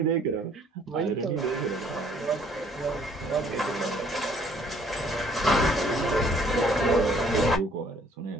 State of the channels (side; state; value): both; normal; correlation 0.61